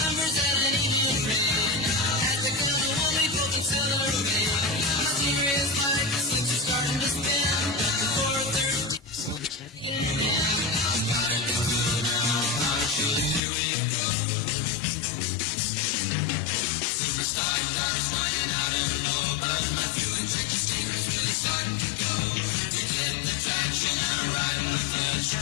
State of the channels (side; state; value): right; drops out; at 13.4 s